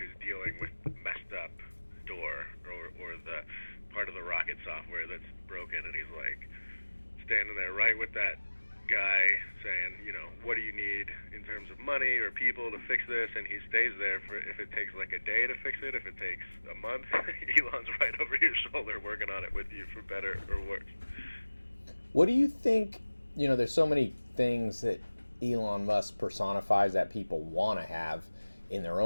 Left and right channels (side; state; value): both; inverted; correlation -1.00